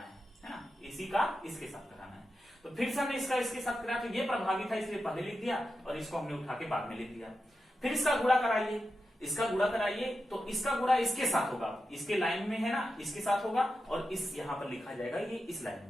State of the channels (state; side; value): normal; both; correlation 0.90